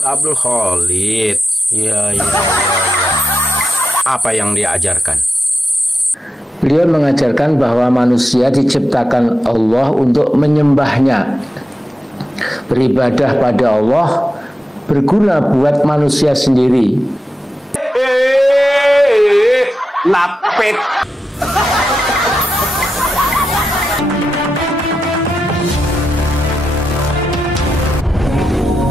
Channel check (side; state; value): both; normal; correlation 0.89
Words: Abdul Khalid. Iya, iya, iya, iya. Apa yang dia ajarkan? Beliau mengajarkan bahwa manusia diciptakan Allah untuk menyembahnya. Beribadah pada Allah berguna buat manusia sendiri. Lapet.